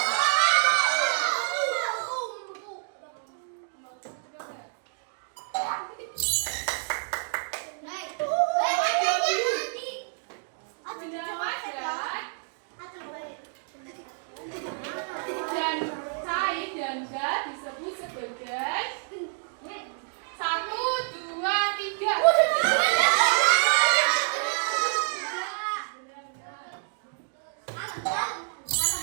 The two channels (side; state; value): left; silent; 59 dB below the other